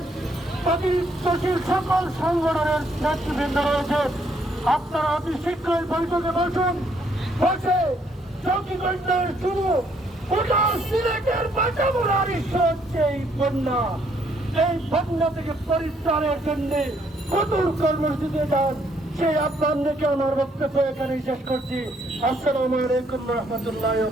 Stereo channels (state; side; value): normal; both; correlation 0.69